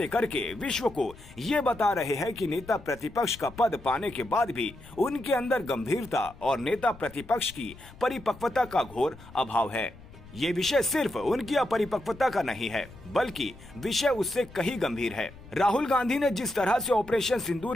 करके विश्व को ये बता रहे हैं कि नेता प्रतिपक्ष का पद पाने के बाद भी उनके अंदर गंभीरता और नेता प्रतिपक्ष की परिपक्वता का घोर अभाव है। ये विषय सिर्फ उनकी अपरिपक्वता का नहीं है, बल्कि विषय उससे कहीं गंभीर है। राहुल गांधी ने जिस तरह से ऑपरेशन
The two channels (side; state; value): left; noise; rumble, 19 dB below the sound